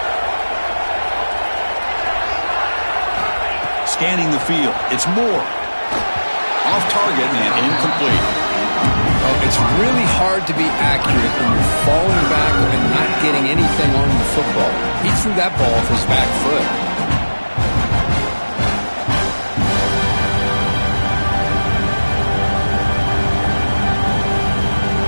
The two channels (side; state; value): both; inverted; correlation -1.00